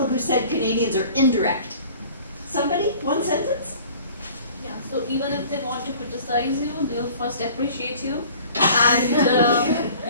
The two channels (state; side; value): inverted; both; correlation -0.48